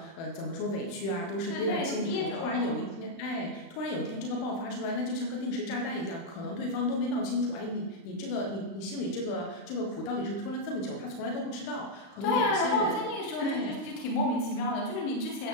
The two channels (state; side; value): late; right; 36 ms